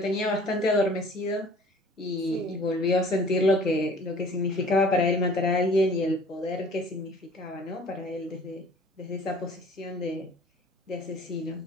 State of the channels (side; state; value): both; normal; correlation 0.50